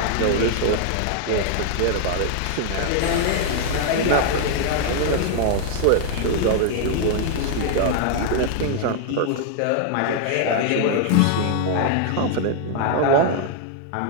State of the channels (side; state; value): both; different; correlation 0.00